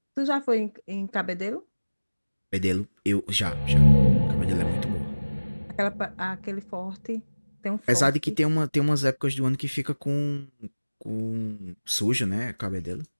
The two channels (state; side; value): inverted; both; correlation -1.00